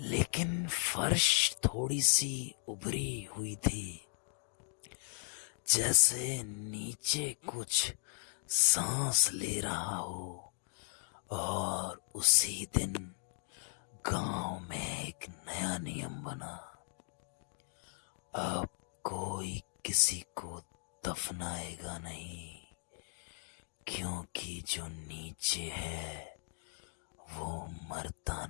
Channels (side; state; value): right; silent; 53 dB below the other